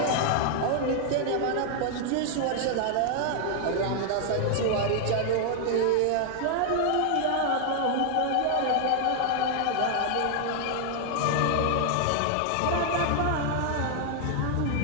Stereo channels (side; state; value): both; different; correlation 0.00